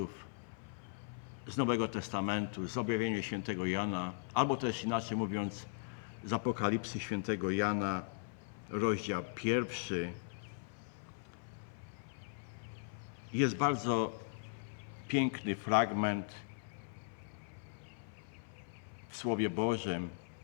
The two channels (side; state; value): right; silent; 52 dB below the other